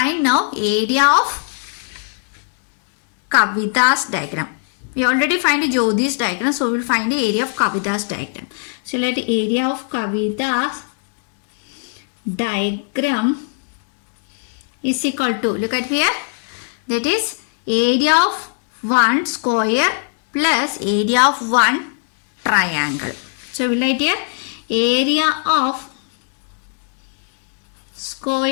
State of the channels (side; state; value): right; silent; 61 dB below the other